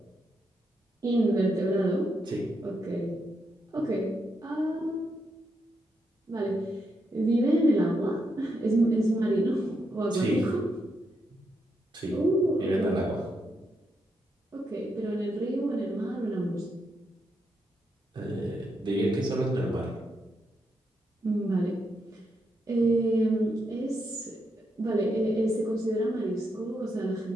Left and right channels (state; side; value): normal; both; correlation 0.81